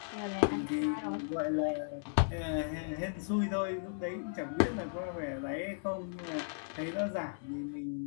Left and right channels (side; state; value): right; silent; 54 dB below the other